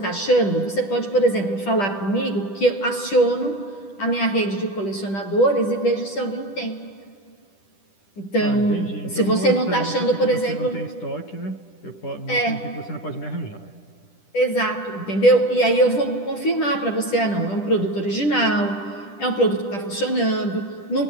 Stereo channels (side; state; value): right; late; 10 ms